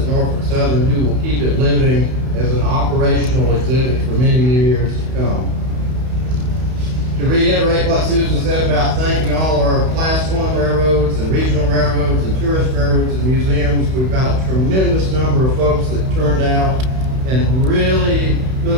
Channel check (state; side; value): late; left; 31 ms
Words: Norfolk Southern who will keep it living as an operational exhibit for many years to come. To reiterate what Susan said about thanking all our Class 1 railroads and regional railroads and tourist railroads and museums, we've got a tremendous number of folks that turned out and really